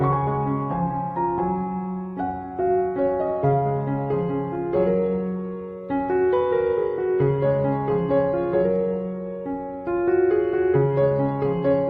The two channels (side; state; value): both; identical; correlation 1.00